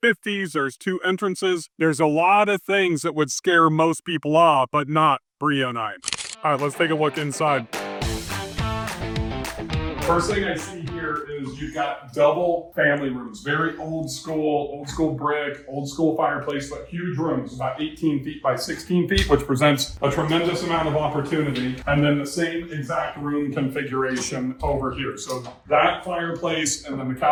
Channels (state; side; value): identical; both; correlation 1.00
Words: There's 2 entrances. There's a lot of things that would scare most people off, but not Brea and I. All right, let's take a look inside. First thing I see here is you've got double family rooms, very old school brick, old school fireplace, but huge rooms, about 18 feet by 16 feet, which presents a tremendous amount of opportunity. And then the same exact room configuration over here. So that fireplace and then the